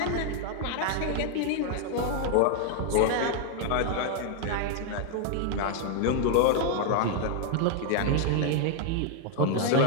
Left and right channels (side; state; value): both; different; correlation 0.00